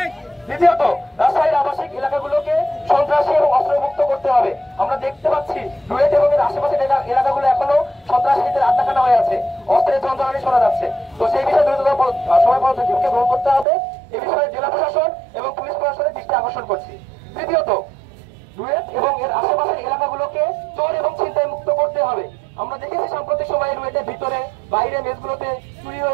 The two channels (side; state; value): left; drops out; at 13.7 s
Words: দ্বিতীয়ত, রাজশাহীর আবাসিক এলাকাগুলোকে সন্ত্রাসী এবং অস্ত্রমুক্ত করতে হবে। আমরা দেখতে পাচ্ছি রুয়েট এবং এর আশেপাশের এলাকাগুলো এখনো সন্ত্রাসীদের আড্ডাখানা হয়ে আছে, অস্ত্রের যন্ত্রণা শোনা যাচ্ছে। তো সেই বিষয়ে দ্রুততম সময় পদক্ষেপকে গ্রহণ করতে হবে। এ বিষয়ে জেলা প্রশাসন এবং পুলিশ প্রশাসনের দৃষ্টি আকর্ষণ করছি। তৃতীয়ত, রুয়েট এবং এর আশেপাশের এলাকাগুলোকে চোর এবং ছিনতাই মুক্ত করতে হবে। আমরা দেখেছি সাম্প্রতিক সময়ে রুয়েটের ভিতরে বাইরে মেসগুলোতে চুরি